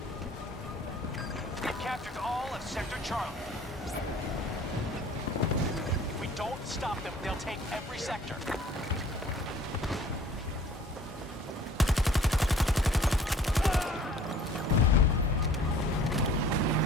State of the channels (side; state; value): both; normal; correlation 0.51